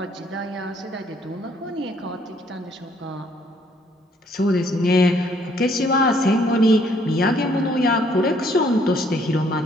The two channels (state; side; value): normal; both; correlation 0.66